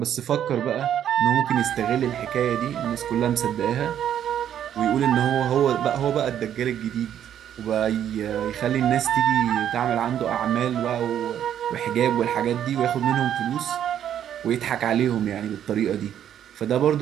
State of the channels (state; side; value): quieter; left; 10.0 dB